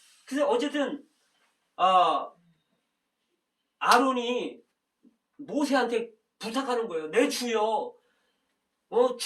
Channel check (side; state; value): both; identical; correlation 1.00